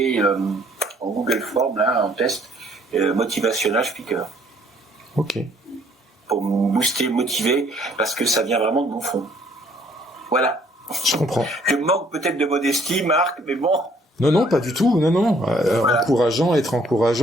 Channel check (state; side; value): normal; both; correlation 0.62